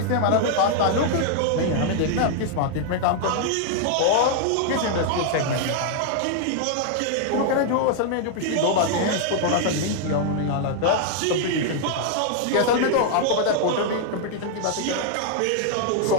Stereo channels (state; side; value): different; both; correlation 0.00